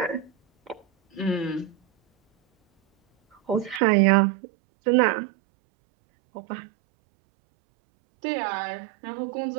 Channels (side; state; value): left; drops out; at 3.8 s